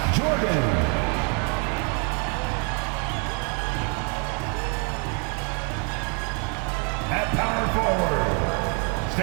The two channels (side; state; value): left; quieter; 37.9 dB